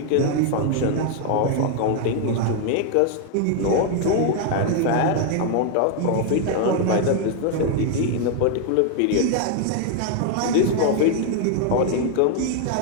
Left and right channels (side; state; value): both; different; correlation 0.00